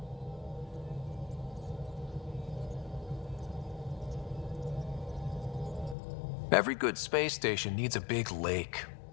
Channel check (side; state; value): right; drops out; at 6.0 s